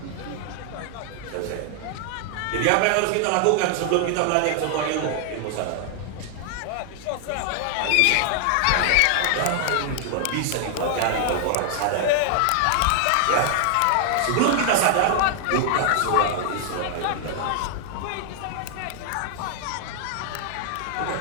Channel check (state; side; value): different; both; correlation 0.00